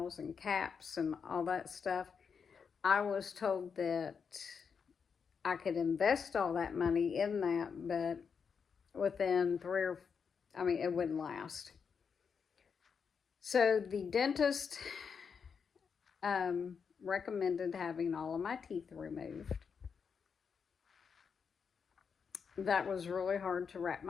and caps and all that stuff, I was told that I could invest all that money in that, but within it wouldn't last. So the dentist recommended having all of my teeth removed. That was really hard to wrap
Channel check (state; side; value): quieter; right; 6.2 dB